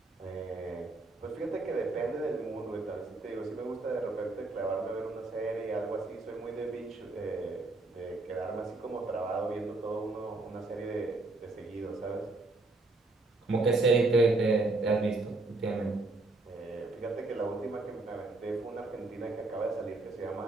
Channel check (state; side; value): quieter; left; 3.2 dB